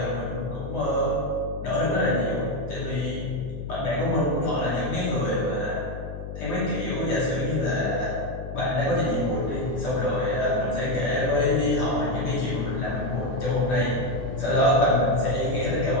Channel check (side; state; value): left; noise; hum, 9 dB below the sound